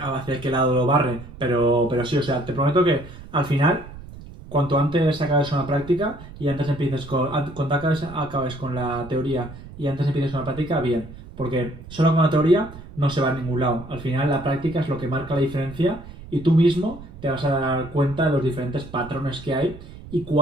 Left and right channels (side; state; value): right; noise; rumble, 16 dB below the sound